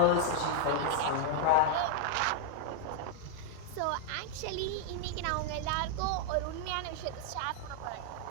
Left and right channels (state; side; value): different; both; correlation -0.01